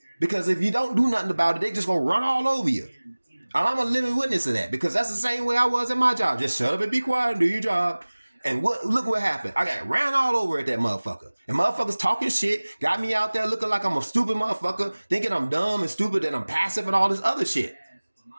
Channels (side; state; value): both; inverted; correlation -1.00